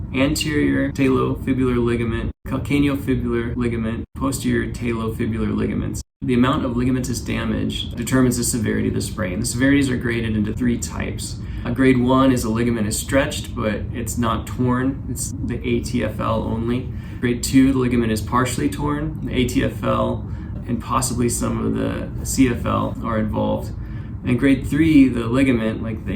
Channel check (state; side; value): identical; both; correlation 1.00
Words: anterior talofibular ligament, calcaneofibular ligament, posterior talofibular ligaments. The amount of ligamentous damage determines the severity of the sprain. The severities are graded into three types. Grade 1 is a ligament is stretched, but it's not torn. It's the ATFL only. Grade 2, the ligament is partially torn. The ATFL and possibly some of the CFL are involved. And grade 3, the ligament, like